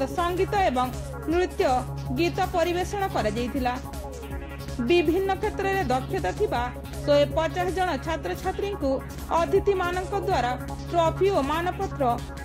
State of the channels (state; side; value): identical; both; correlation 1.00